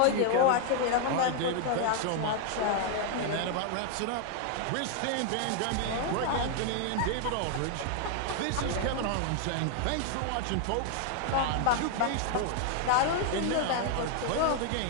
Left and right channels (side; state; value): both; different; correlation 0.00